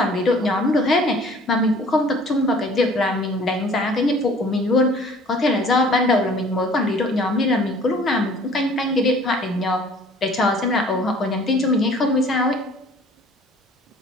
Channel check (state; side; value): normal; both; correlation 0.51